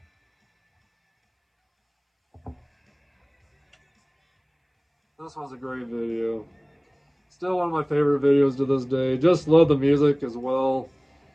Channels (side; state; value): both; identical; correlation 1.00